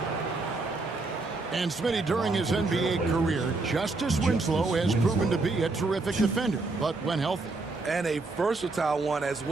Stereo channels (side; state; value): left; quieter; 3.5 dB